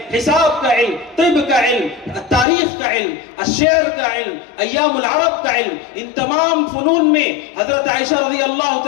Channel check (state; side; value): drops out; right; at 2.5 s